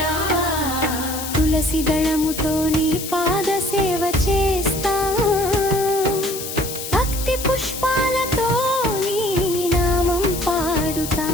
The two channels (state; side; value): noise; left; hiss, 8 dB below the sound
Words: తులసి దళముతో నీ పాద సేవ చేస్తా భక్తి పుష్పాలతో నీ నామం పాడుతా